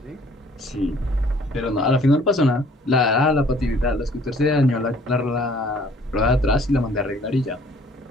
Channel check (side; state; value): both; normal; correlation 0.57